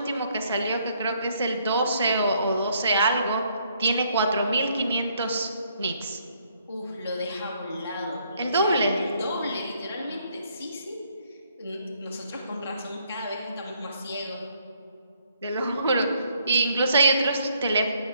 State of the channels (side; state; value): both; inverted; correlation -0.69